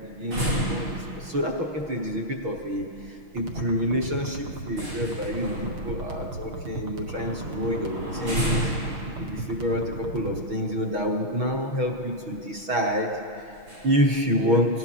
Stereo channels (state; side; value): late; left; 6.3 ms